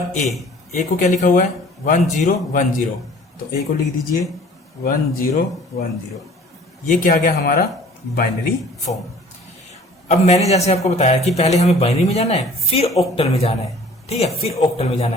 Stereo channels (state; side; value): normal; both; correlation 0.50